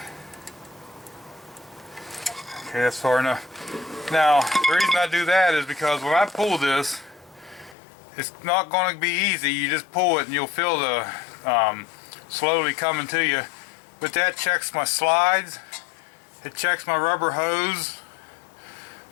Okay, that's far enough. Now, the reason I do that is because when I pull this, it's not going to be easy. You just pull it and you'll feel the slowly coming to you. But that checks my slides. It checks my rubber hose.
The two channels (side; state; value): right; drops out; at 7.8 s